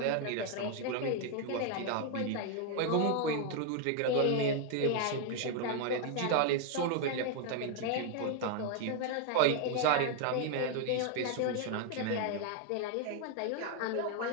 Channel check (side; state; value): both; different; correlation 0.00